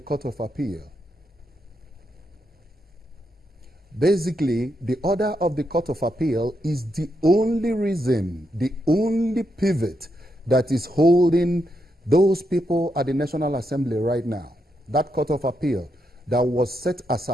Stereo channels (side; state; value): both; normal; correlation 0.82